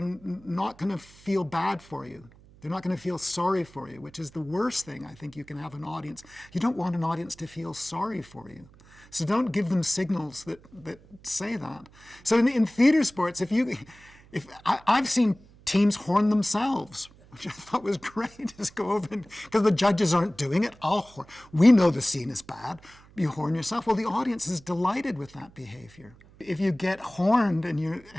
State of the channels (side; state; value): right; noise; hum, 25 dB below the sound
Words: not going to feel bad for you. They're not going to feel sorry for you, which is the worst thing I think you can have an audience. You don't want an audience to feel sorry for you. So don't give them signals that say that. So in theater sports, I've seen teams horn themselves, which I thought was great. Just go over because the judges aren't doing it. I'll horn. We know the scene is bad. You horn yourself. Well, the audience is delighted with that behavior. If you get horned and